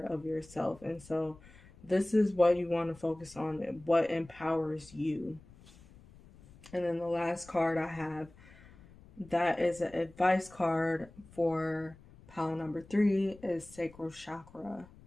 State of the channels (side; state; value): left; noise; rumble, 23 dB below the sound